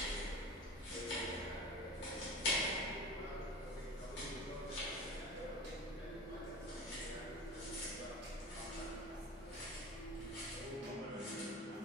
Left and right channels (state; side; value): normal; both; correlation 0.33